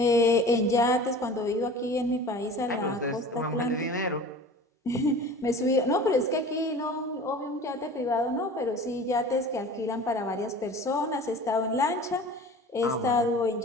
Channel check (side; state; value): both; normal; correlation 0.40